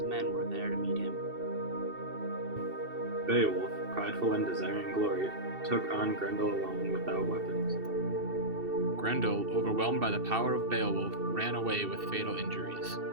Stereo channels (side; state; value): left; late; 2.7 ms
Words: men were there to meet him. Beowulf, prideful and desiring glory, took on Grendel alone without weapons. Grendel, overwhelmed by the power of Beowulf, ran away with fatal injuries.